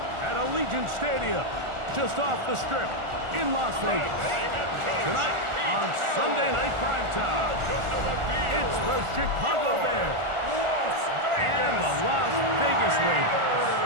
at Allegiant Stadium, just off the Strip in Las Vegas. Tonight on Sunday Night Primetime, it's the Chicago Bears and the Las Vegas Raiders.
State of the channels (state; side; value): late; left; 1.4 ms